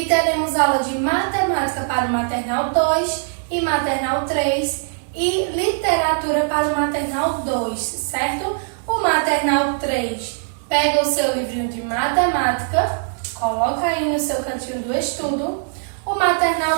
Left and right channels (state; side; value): silent; left; digital silence